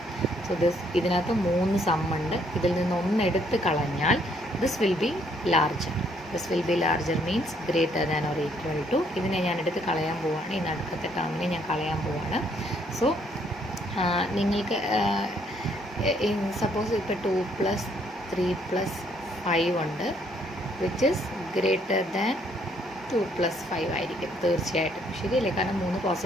സോ ഇതിനകത്ത് 3 സമ്മുണ്ട്. ഇതിൽ നിന്ന് 1 എടുത്ത് കളഞ്ഞാൽ this will be larger. This will be larger means greater than or equal to. ഇതിനെ ഞാൻ എടുത്ത് കളയാൻ പോവുകയാണ്. ഈ നടുക്കത്തെ ടേമിനെ ഞാൻ കളയാൻ പോവുകയാണ്. സോ നിങ്ങൾക്ക് സപ്പോസ് ഇപ്പോൾ 2 + 3 + 5 ഉണ്ട്, വിച്ച് ഇസ് ഗ്രേറ്റർ ദാൻ 2 + 5 ആയിരിക്കും തീർച്ചയായിട്ടും. ശരിയല്ലേ? കാരണം 3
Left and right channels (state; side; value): normal; both; correlation 0.68